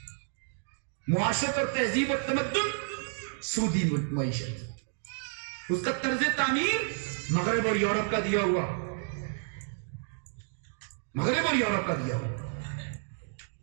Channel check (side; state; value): left; silent; 56 dB below the other